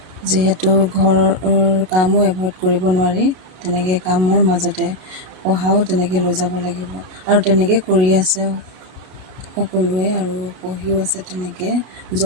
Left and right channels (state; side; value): late; left; 32 ms